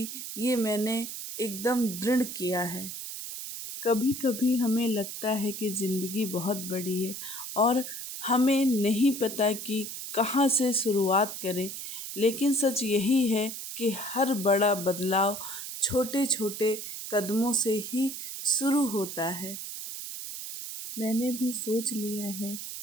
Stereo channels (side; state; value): right; noise; hiss, 8 dB below the sound